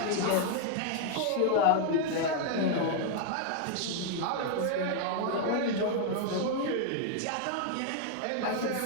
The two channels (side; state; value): both; different; correlation 0.00